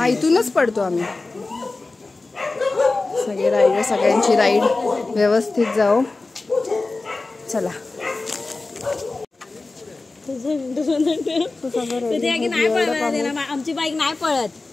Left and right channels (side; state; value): right; quieter; 3.5 dB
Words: इथूनच पडतो आम्ही. सगळे राईडर सगळ्यांची राईड व्यवस्थित जाओ. चला आमची बाईक नाही पळत.